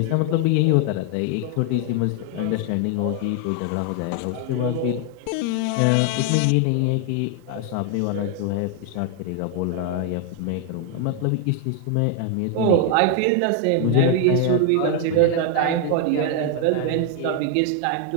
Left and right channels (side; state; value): both; different; correlation 0.00